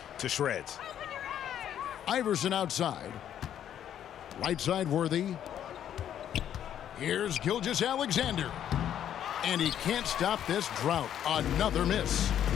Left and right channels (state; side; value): quieter; right; 10.2 dB